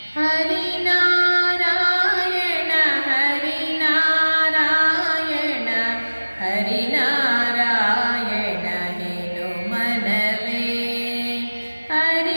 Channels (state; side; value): inverted; both; correlation -1.00